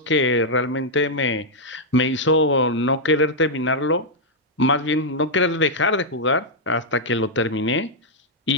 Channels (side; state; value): both; normal; correlation -0.04